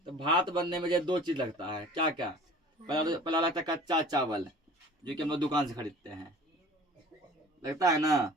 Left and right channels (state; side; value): normal; both; correlation 0.45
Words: तो भात बनने में ये 2 चीज लगता है। क्या क्या, पहला लगता है कच्चा चावल, जो कि हम लोग दुकान से खरीदते हैं, लगता है ना,